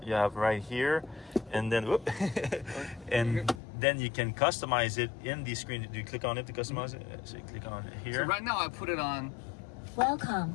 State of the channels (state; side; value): drops out; right; at 3.6 s